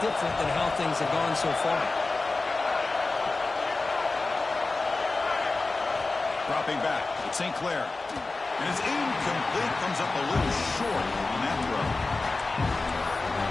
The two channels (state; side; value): quieter; right; 3.5 dB